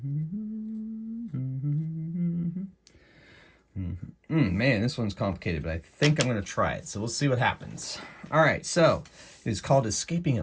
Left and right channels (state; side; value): identical; both; correlation 1.00